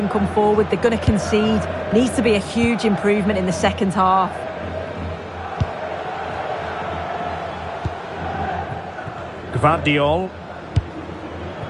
come forward, they're going to concede. Needs to be a huge improvement in the second half. Gvardiol.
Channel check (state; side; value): identical; both; correlation 1.00